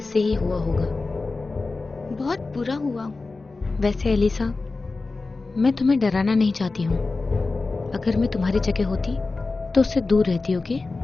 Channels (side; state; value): right; quieter; 3.7 dB